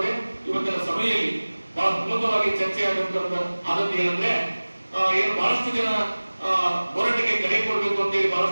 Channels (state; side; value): inverted; both; correlation -1.00